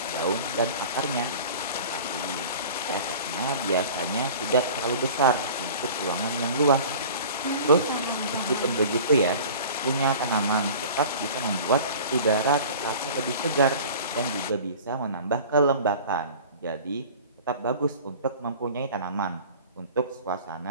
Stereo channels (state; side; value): inverted; both; correlation -0.41